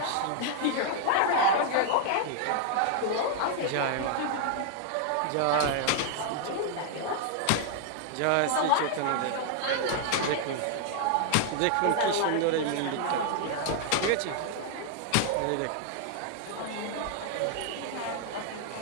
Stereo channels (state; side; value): different; both; correlation 0.00